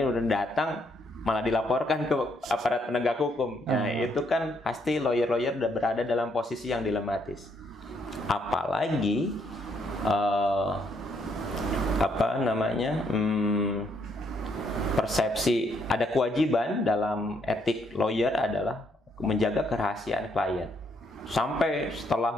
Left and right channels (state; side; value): normal; both; correlation 0.72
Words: udah datang malah dilaporkan ke aparat penegak hukum. Nah, itu kan pasti lawyer-lawyer udah berada dalam posisi yang dilematis. Apalagi persepsi ada kewajiban dalam etik lawyer adalah menjaga kerahasiaan klien sampai